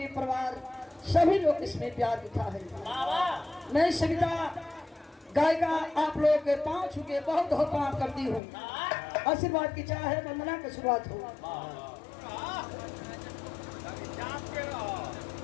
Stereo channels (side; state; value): right; drops out; at 8.4 s